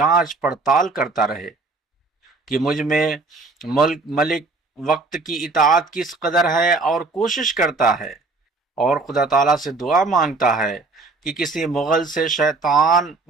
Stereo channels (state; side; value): quieter; left; 3.7 dB